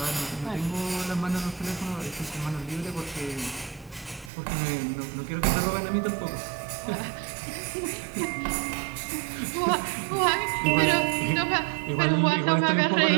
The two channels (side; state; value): left; drops out; at 4.3 s